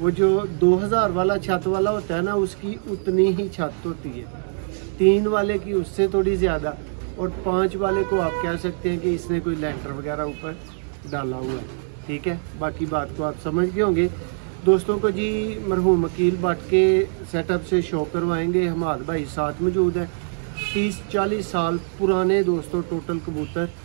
जो 2000 वाला छत वाला होता है ना, उसकी उतनी ही छत होती है, 3 वाले की उससे थोड़ी ज़्यादा, और 5 वाले को आप कह सकते हैं कि इसने कोई लेंटर वगैरह ऊपर डाला हुआ है। ठीक है, बाकी बात को आप समझ गए होंगे। दोस्तों को जी मरहूम वकील भट्ट के सेटअप से शो करवाएंगे। हमाद भाई साथ मौजूद है। 30-40 साल पुराने दोस्तों टोटल कबूतर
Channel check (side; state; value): left; silent; digital silence